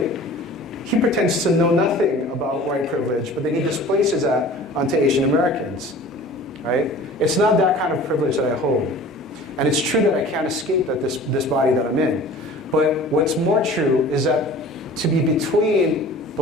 He pretends to know nothing about white privilege, but then he displaces that onto Asian Americans, right? It's not that kind of privilege that I hold. And it's true that I can't escape that this body that I'm in. But what's more true is that to be between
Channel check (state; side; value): normal; both; correlation 0.43